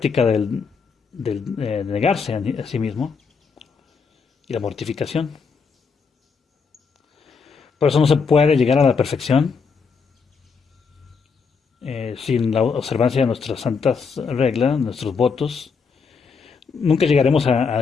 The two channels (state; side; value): quieter; right; 5.4 dB